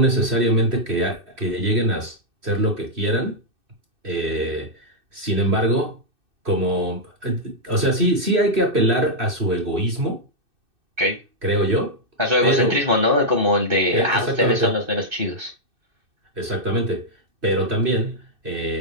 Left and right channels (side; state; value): left; late; 2.6 ms